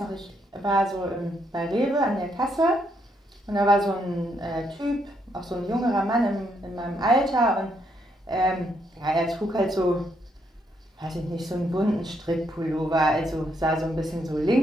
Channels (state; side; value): normal; both; correlation 0.75